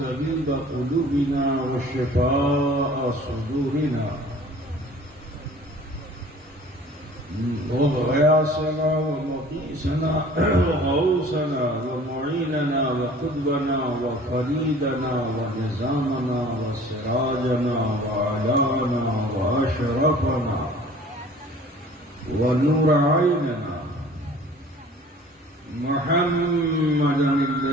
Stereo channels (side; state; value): both; normal; correlation 0.48